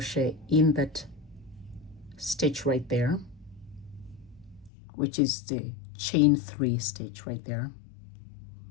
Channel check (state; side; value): drops out; right; at 4.7 s